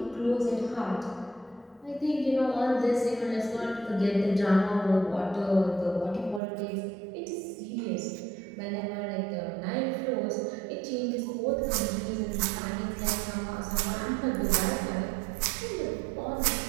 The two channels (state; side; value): drops out; left; at 6.4 s